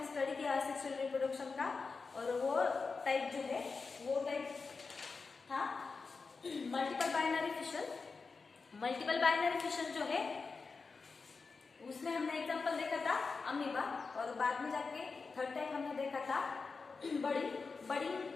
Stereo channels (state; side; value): quieter; right; 4.5 dB